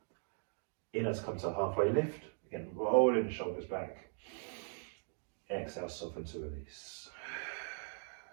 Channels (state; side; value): silent; left; digital silence